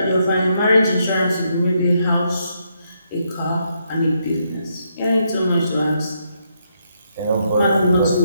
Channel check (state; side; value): inverted; both; correlation -0.77